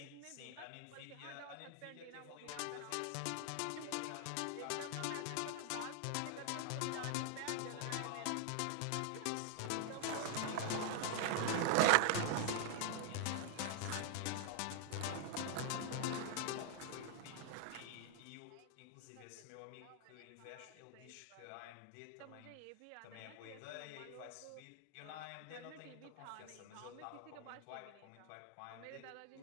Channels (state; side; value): different; both; correlation 0.00